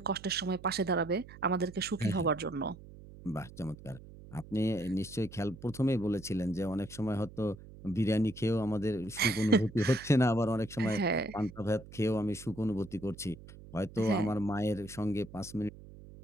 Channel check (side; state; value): right; noise; hum, 17 dB below the sound